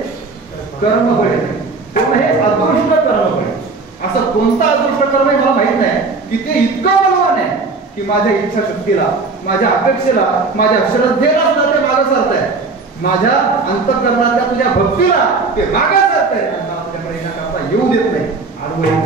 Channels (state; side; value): quieter; left; 4.0 dB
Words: कर्म बळे, कोण हे अदृष्ट कर्म बळे. असं कोणता अदृष्ट कर्म आहे मला माहित नाही की ते इतकं बलवान आहे की माझ्या इच्छाशक्तीला, माझ्या अपेक्षेला, माझ्या श्रद्धेला सुद्धा ते मागे सरत आहे. माझ्या अंतःकरणातल्या तुझ्या भक्तीला ते मागे सरत आहे आणि मला तुझ्याकडे येण्याकरता येऊ देत नाही, अडवू येत